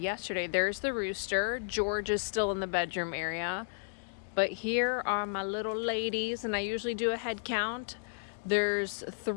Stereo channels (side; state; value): right; silent; digital silence